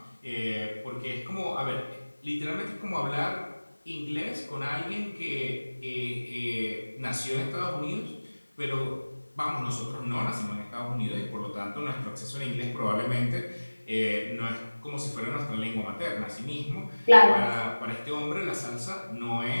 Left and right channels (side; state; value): both; inverted; correlation -1.00